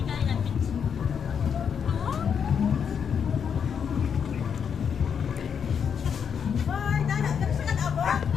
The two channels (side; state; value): right; quieter; 7.2 dB